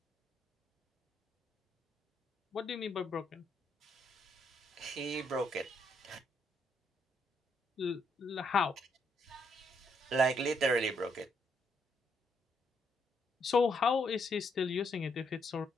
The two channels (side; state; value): both; normal; correlation 0.74